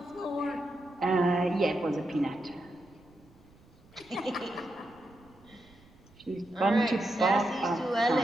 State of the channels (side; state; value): right; noise; rumble, 27 dB below the sound